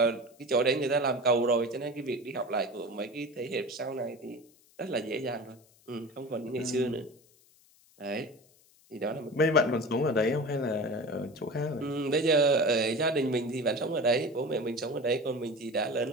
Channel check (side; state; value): left; noise; hiss, 30 dB below the sound